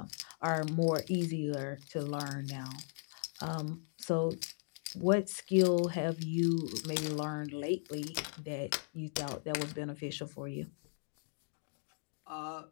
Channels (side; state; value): right; silent; digital silence